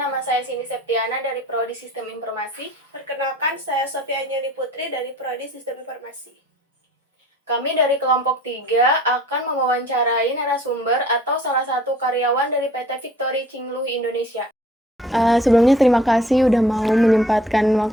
saya Cindy Septiana dari Prodi Sistem Informasi. Perkenalkan, saya Sofia Anjali Putri dari Prodi Sistem Informasi. Kami dari kelompok 3 akan mewawancarai narasumber atau salah satu karyawan dari PT Victory Cingluh Indonesia. Sebelumnya terima kasih udah mau menyempatkan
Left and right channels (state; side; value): normal; both; correlation 0.52